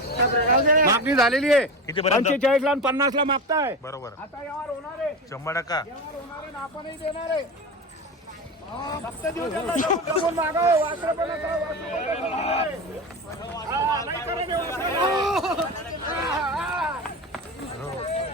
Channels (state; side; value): normal; both; correlation 0.25